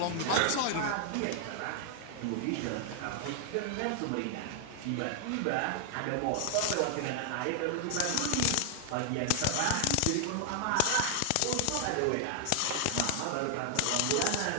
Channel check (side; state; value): both; different; correlation 0.00